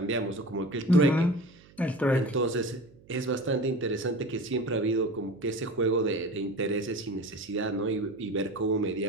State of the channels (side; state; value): right; noise; hum, 26 dB below the sound